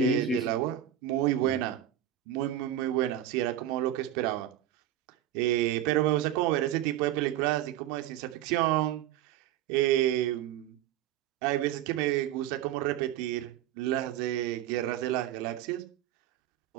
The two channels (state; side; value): quieter; left; 11.5 dB